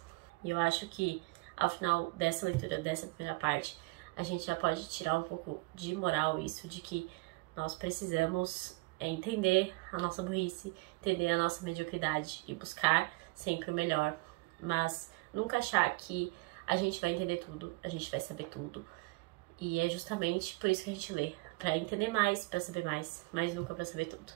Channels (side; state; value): left; quieter; 25.3 dB